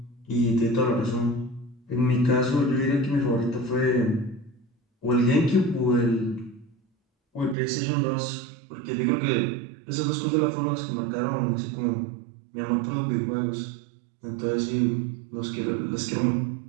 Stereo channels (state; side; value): drops out; left; at 7.6 s